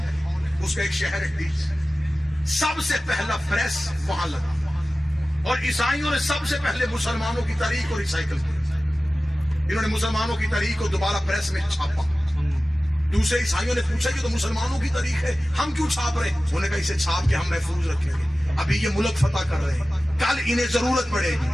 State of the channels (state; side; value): normal; both; correlation 0.96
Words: اس کا ایک شہر ہے ڈیس، سب سے پہلا پریس وہاں لگا، اور عیسائیوں نے سب سے پہلے مسلمانوں کی تاریخ کو ریسائیکل کیا۔ انہوں نے مسلمانوں کی تاریخ کو دوبارہ پریس میں چھاپا۔ دوسرے عیسائیوں نے پوچھا یہ تو مسلمانوں کی تاریخ ہے، ہم کیوں چھاپ رہے ہیں؟ انہوں نے کہا اسے چھاپ کے ہم محفوظ رکھیں گے، ابھی یہ ملک فتح کر رہے ہیں، کل انہیں ضرورت پڑے گی،